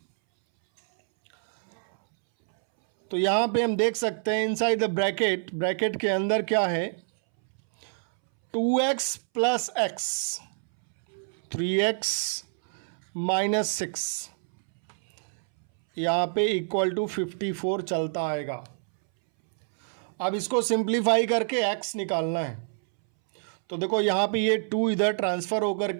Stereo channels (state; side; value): silent; left; 60 dB below the other